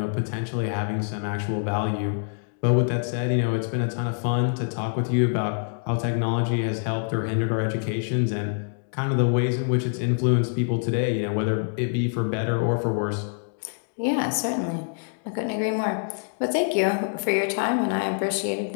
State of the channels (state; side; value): silent; right; digital silence